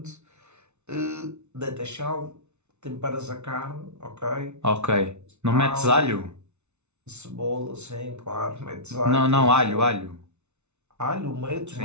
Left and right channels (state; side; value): late; left; 0.82 ms